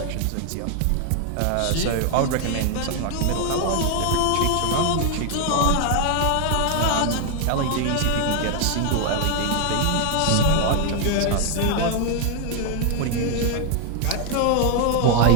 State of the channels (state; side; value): different; both; correlation 0.00